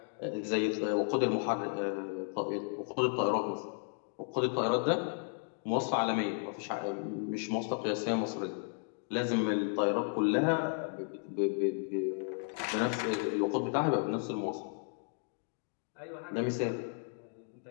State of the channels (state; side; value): silent; right; 55 dB below the other